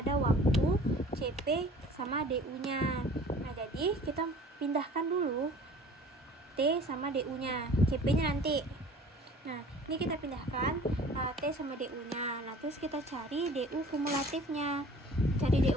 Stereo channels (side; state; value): both; normal; correlation 0.47